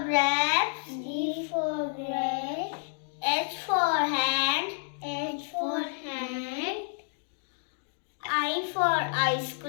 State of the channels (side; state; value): right; silent; digital silence